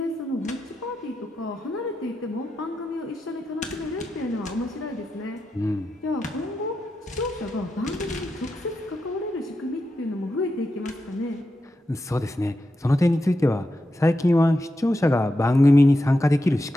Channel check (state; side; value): normal; both; correlation 0.88